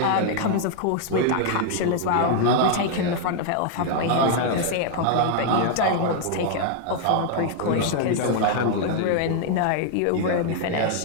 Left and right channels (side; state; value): both; different; correlation 0.00